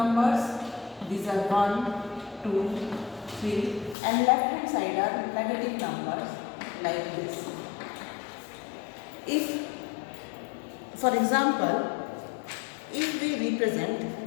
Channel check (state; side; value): drops out; right; at 4.0 s